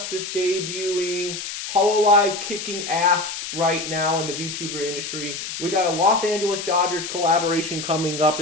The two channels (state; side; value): noise; left; hiss, 7 dB below the sound